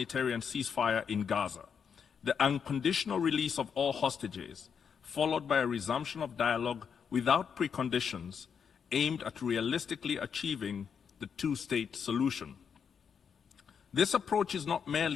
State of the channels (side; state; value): right; quieter; 6.9 dB